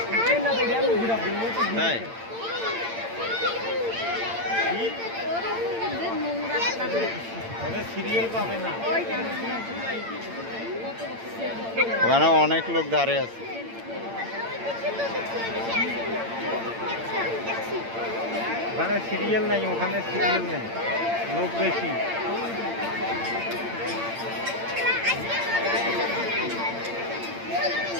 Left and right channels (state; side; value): late; left; 8.8 ms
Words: তাই ওখানে অনেক লোক দাঁড়িয়ে আছে। ওখানে সিরিয়াল নাই, ওখানে সিরিয়াল নাই, লোক বেশি।